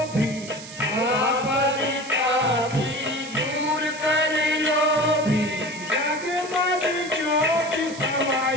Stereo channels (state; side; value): noise; right; hiss, 14 dB below the sound